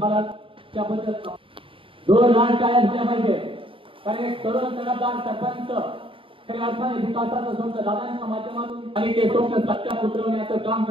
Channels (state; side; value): late; left; 0.25 ms